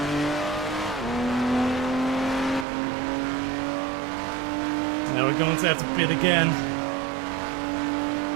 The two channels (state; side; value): drops out; left; at 2.7 s